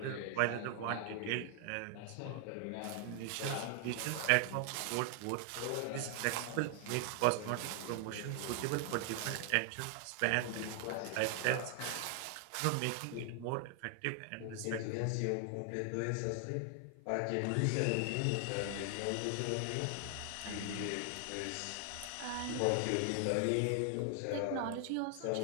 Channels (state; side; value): different; both; correlation 0.00